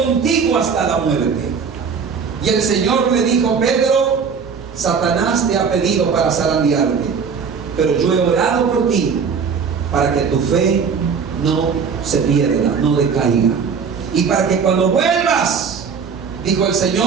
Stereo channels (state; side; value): quieter; left; 6.1 dB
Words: hasta la muerte. Y el Señor le dijo, Pedro, Satanás te ha pedido para zarandearte, pero yo he orado por ti para que tu fe no se pierda, no decaiga. Y para que cuando vuelvas, dijo el